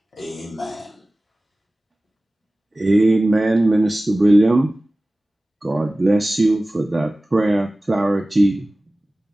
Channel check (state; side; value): normal; both; correlation 0.97